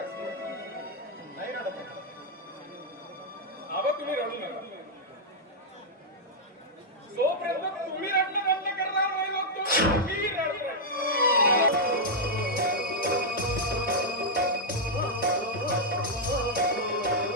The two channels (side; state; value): both; normal; correlation -0.05